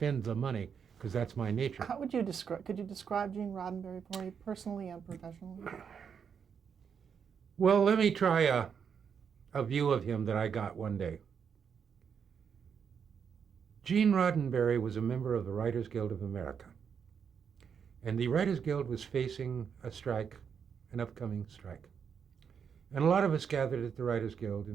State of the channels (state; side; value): quieter; left; 7.0 dB